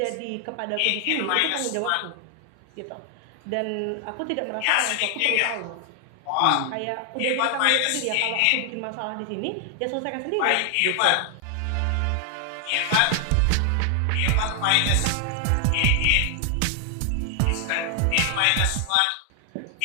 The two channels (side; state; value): both; different; correlation 0.00